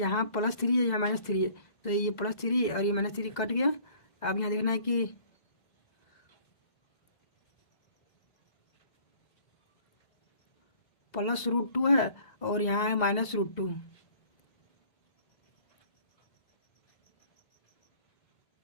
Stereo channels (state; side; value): late; right; 2.0 ms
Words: +3 है, यहाँ -3 है, तो ये +3 और ये -3 कट गया। अब यहाँ देखना है कि प्लस √2 है और यहाँ है -√2।